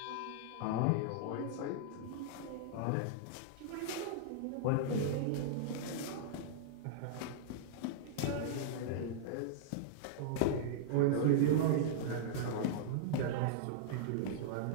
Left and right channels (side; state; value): both; different; correlation -0.02